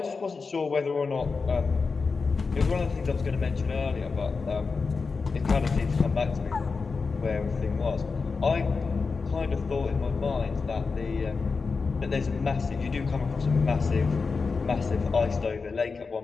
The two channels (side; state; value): right; quieter; 4.6 dB